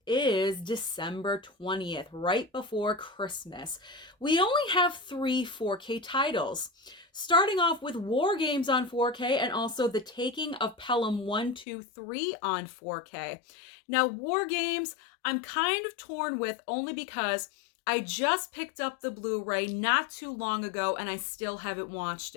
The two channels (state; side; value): drops out; right; at 11.7 s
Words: is December 20th, right before Christmas. We only have 3 4K titles. Starting off with War Games on 4K and also The Taking of Pelham 1, 2, 3 on 4K. Now, War Games, I'm kind of torn with only because I just picked up the Blu-ray not too long ago and I still haven't watched